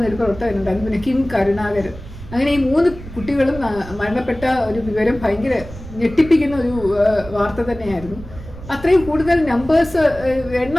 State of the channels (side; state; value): right; noise; rumble, 15 dB below the sound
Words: പ്രവർത്തകനുണ്ടായിരുന്നു, പിന്നെ കിം കരുണാകരൻ. അങ്ങനെ ഈ 3 കുട്ടികളും മരണപ്പെട്ട ഒരു വിവരം ഭയങ്കര ഞെട്ടിപ്പിക്കുന്ന ഒരു വാർത്ത തന്നെയായിരുന്നു. അത്രയും കൂടുതൽ നമ്പേഴ്സ്,